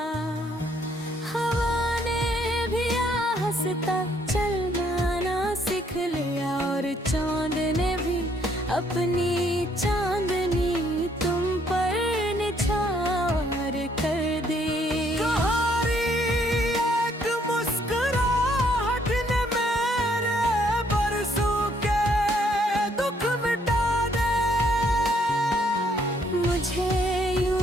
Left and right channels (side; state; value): both; normal; correlation 0.68